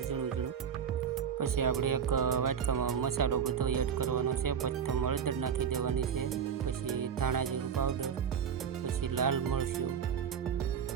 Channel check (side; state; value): left; quieter; 7.5 dB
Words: ઝીણું ઝીણું। પછી આપણે એક વાટકામાં મસાલો બધો એડ કરવાનો છે। પ્રથમ હળદર નાખી દેવાની છે, પછી ધાણા જીરું પાવડર, પછી લાલ મરચું